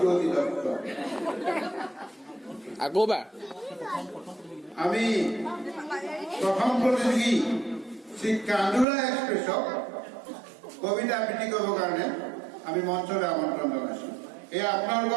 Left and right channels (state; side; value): drops out; left; at 8.8 s